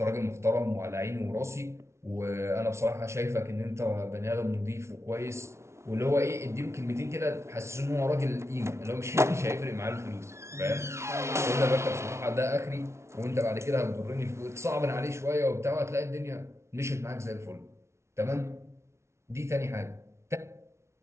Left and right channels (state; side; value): late; left; 0.13 ms